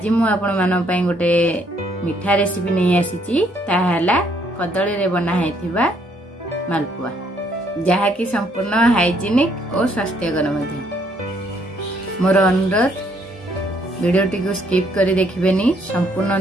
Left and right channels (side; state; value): both; normal; correlation 0.68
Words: मु आपण मान पई गोटे मिठा रेसिपी नै आसीची ताहाला कदली रे बना हैथिबा मालपुआ जहा कि संपूर्ण हाइजीनिक और स्वास्थ्यकर मध्ये। मोर अनुरोध वीडियो टी को स्किप करी देखिबेनी, संपूर्ण